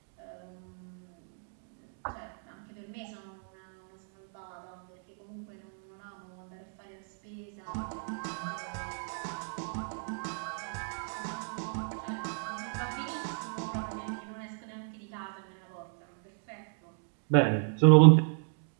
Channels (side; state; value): left; silent; 55 dB below the other